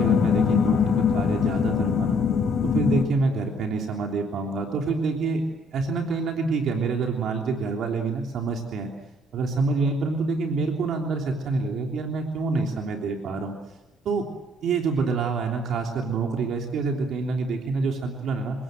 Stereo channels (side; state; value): both; normal; correlation 0.63